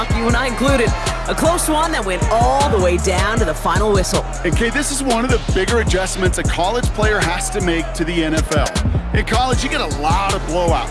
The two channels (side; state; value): both; identical; correlation 1.00